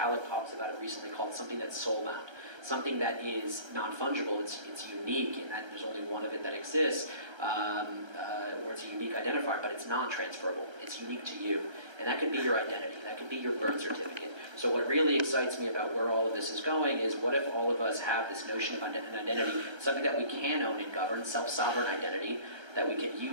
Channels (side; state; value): left; late; 1.3 ms